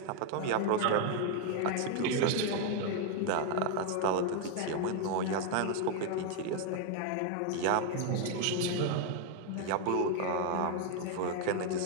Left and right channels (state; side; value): different; both; correlation 0.00